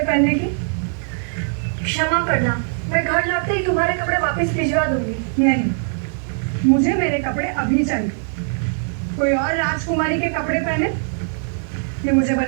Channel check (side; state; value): left; silent; digital silence